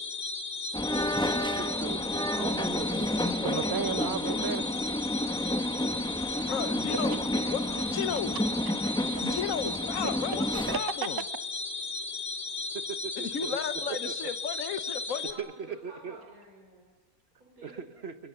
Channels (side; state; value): both; normal; correlation 0.40